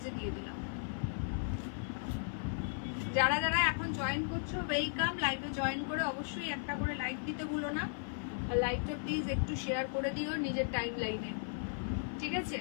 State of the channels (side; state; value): right; silent; 54 dB below the other